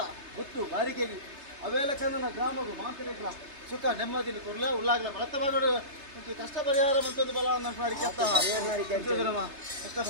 ಗೊತ್ತು ಬಾರಿಕೆಗೆ ಅವೆಲ್ಲ ಕನ್ನ ಗ್ರಾಮಗು ಮಾಂತ ರೆಗ್ಲ ಸುಖ ನೆಮ್ಮದಿನ ಕೊರ್ಲ ಉಳ್ಳಾಗ್ಲ ಬಳತ ಬಾಗೋಡು ಕಷ್ಟ ಪರಿಹಾರ ಮಂತೊಂದು ಬಲ ಮಾಡಿ ಕೆತ್ತ ಕಷ್ಟ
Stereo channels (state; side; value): late; left; 3.3 ms